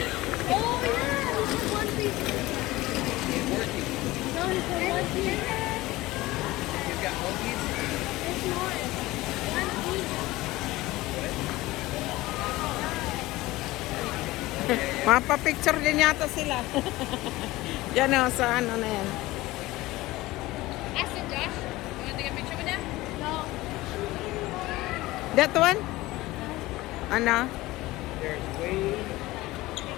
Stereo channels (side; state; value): right; quieter; 18.8 dB